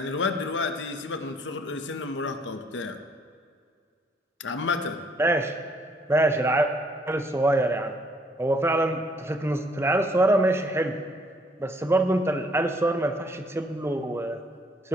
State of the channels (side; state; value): both; normal; correlation 0.64